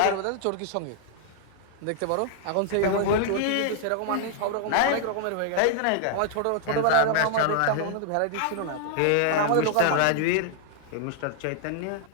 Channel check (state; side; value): different; both; correlation -0.01